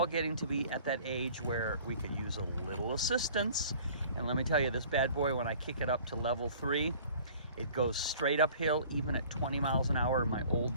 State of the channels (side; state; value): both; inverted; correlation -0.49